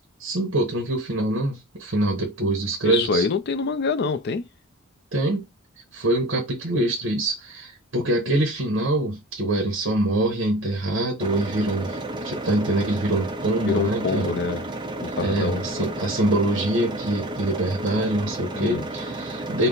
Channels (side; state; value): both; normal; correlation 0.36